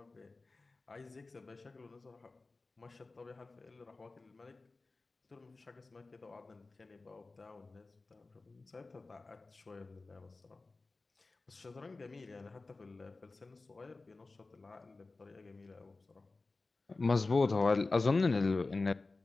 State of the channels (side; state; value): right; quieter; 3.5 dB